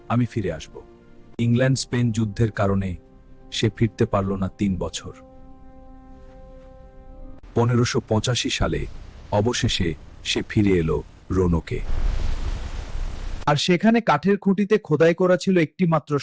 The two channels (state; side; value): identical; both; correlation 1.00